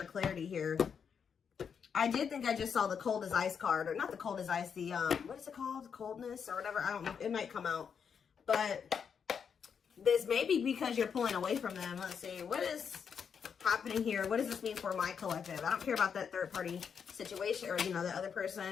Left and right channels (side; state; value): right; quieter; 6.9 dB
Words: or clarity here. I did think I just saw the cold as ice card, or not the cold as ice, the, what is it called? Coldness or whatever. I don't know. It might come out. But this may be because you're pulling away from them. Let's see. What is happening here? What does this mean for my collective? I don't care about that third party situation or, you know, the other